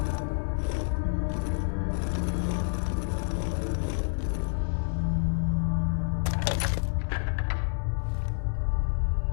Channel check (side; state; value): right; silent; 58 dB below the other